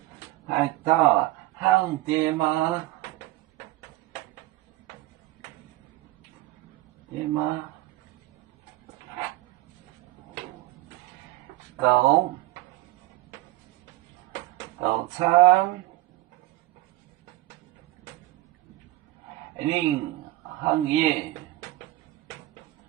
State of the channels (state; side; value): quieter; left; 17.7 dB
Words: 海盗行爹妈，爹妈，狗。早餐，零行业，